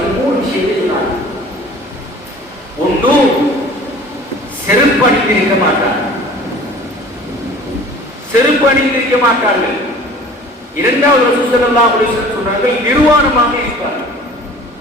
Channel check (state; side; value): normal; both; correlation 0.46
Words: 3 விஷயத்தை சொன்னார். ஒன்று, செருப்பு அணிந்திருக்க மாட்டார், செருப்பு அணிந்திருக்க மாட்டார்கள். இரண்டாவது ரசூல் ஸல்லல்லாஹு அலைஹி வஸல்லம் சொன்னார்கள், நிர்வாணமாக இருப்பார்கள்,